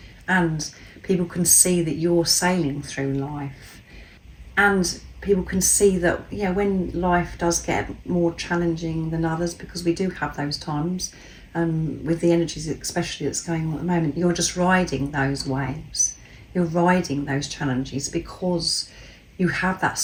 And people can see that you're sailing through life. And people can see that, yeah, when life does get more challenging than others, because we do have those times, with the energies especially that's going on at the moment, you're just riding those waves. You're riding those challenges because you have that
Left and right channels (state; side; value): identical; both; correlation 1.00